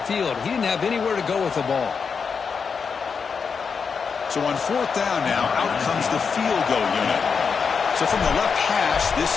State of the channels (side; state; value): right; quieter; 5.8 dB